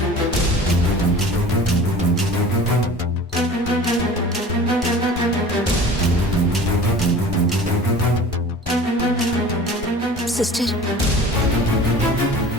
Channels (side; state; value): both; normal; correlation 0.41